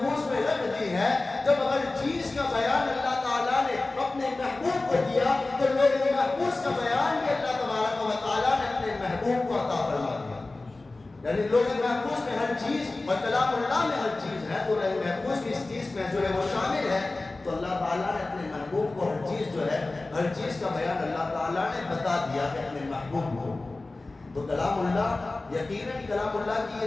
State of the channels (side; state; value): right; quieter; 3.2 dB